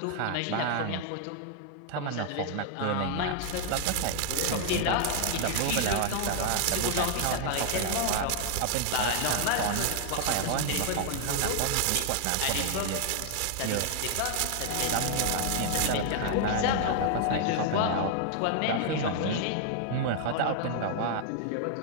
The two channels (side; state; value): both; different; correlation 0.00